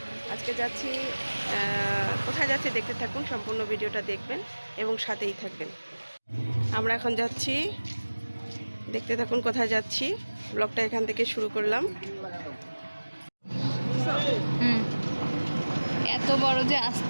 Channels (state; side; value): inverted; both; correlation -1.00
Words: আজকে যাচ্ছি, কোথায় যাচ্ছি দেখতে থাকুন, সম্পূর্ণ ভিডিওটা দেখবেন এবং সাথেই থাকবেন। আমরা এখন যাচ্ছি, দেখতে থাকুন কোথায় যাচ্ছি। ব্লগটা এখান থেকে শুরু করলাম। এত বড় যে